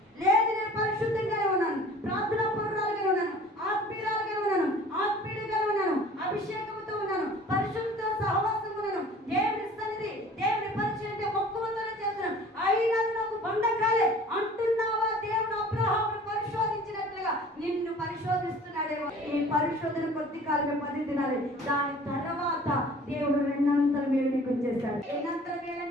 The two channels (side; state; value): both; normal; correlation 0.47